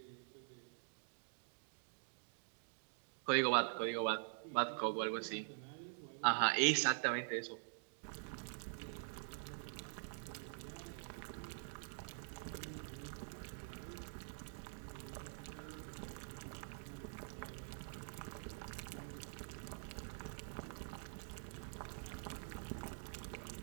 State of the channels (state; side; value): silent; left; digital silence